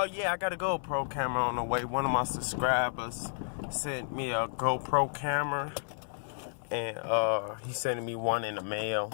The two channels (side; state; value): right; silent; 57 dB below the other